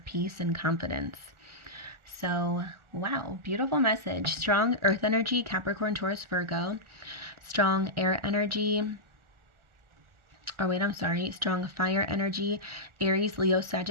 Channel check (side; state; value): left; late; 1.4 ms